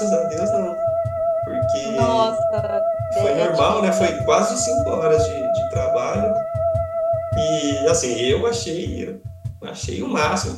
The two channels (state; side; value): identical; both; correlation 1.00